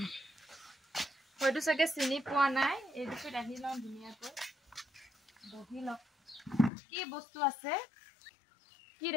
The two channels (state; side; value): drops out; right; at 6.7 s